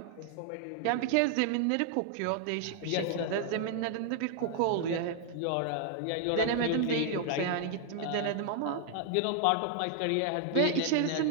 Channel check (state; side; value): different; both; correlation 0.00